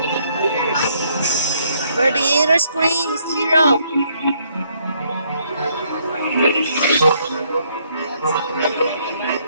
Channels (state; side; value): inverted; both; correlation -0.69